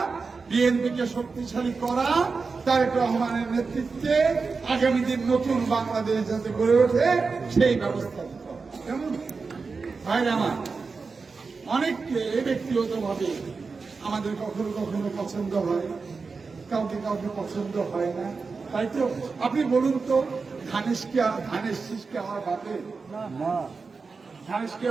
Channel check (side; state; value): left; quieter; 4.6 dB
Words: বিএনপিকে শক্তিশালী করা, তারেক রহমানের নেতৃত্বে আগামী দিন নতুন বাংলাদেশ যাতে গড়ে ওঠে সেই ব্যবস্থা করা। কেমন ভাইরা আমার, অনেককে ব্যক্তিগতভাবে আমাদের কখনো কখনো পছন্দ হয়, কাউকে কাউকে পছন্দ হয় না, তাই তো। আপনি বলুন তো, ধানের শীষকে আমার বাপে না, ধানের শীষ